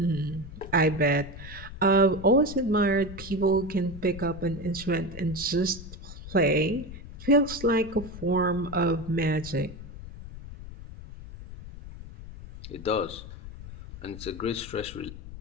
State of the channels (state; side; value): noise; left; rumble, 13 dB below the sound